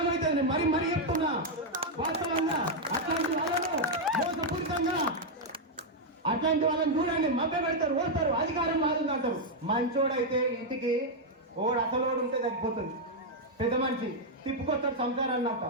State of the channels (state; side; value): normal; both; correlation -0.01